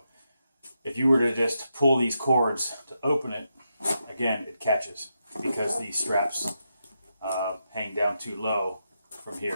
if you were to just pull these cords to open it, again, it catches because these straps hang down too low from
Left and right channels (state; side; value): inverted; both; correlation -0.84